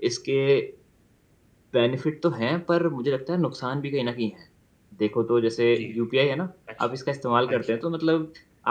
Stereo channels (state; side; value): identical; both; correlation 1.00